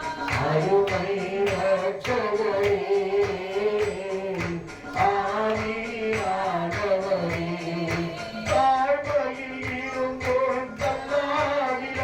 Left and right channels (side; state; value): both; identical; correlation 1.00